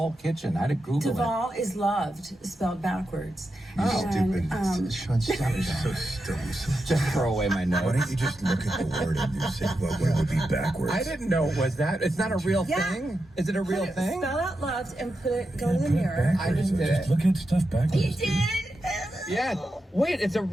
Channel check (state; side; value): normal; both; correlation 0.88